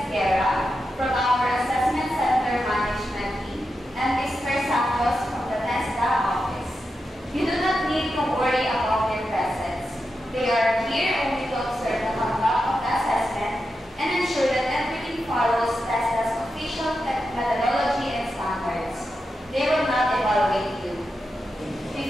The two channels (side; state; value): both; normal; correlation 0.88